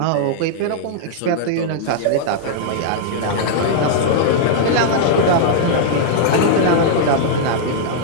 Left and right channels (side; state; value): both; different; correlation -0.02